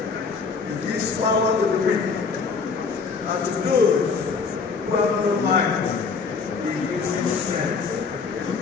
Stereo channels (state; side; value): quieter; right; 5.1 dB